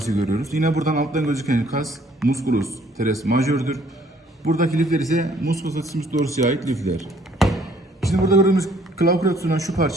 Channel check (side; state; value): both; normal; correlation 0.61